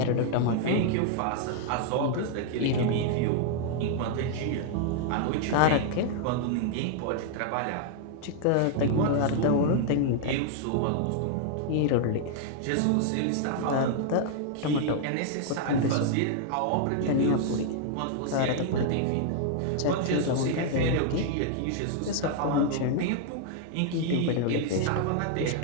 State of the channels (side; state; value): both; different; correlation -0.01